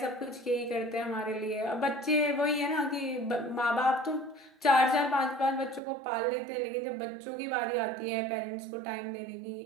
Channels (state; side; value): drops out; left; at 5.8 s